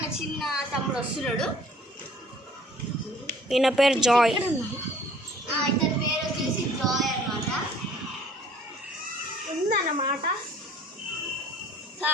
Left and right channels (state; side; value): normal; both; correlation 0.53